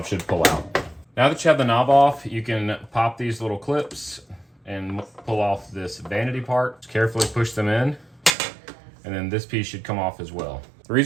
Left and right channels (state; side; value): drops out; left; at 8.3 s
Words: should pull out. Now that you have the knob off, you can pop these little clips and pull off this vanity part. Just carefully push them in, and then this piece should come off as well. The